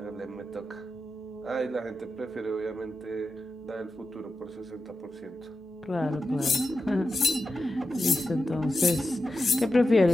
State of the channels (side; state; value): both; normal; correlation 0.90